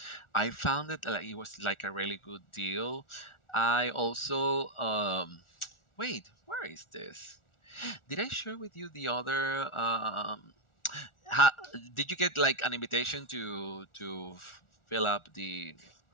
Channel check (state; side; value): late; right; 1.4 ms